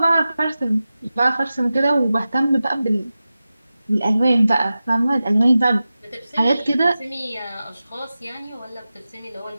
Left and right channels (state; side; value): inverted; both; correlation -0.94